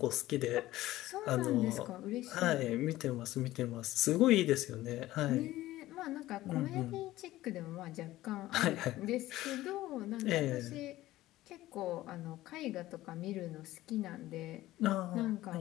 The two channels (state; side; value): quieter; right; 16.1 dB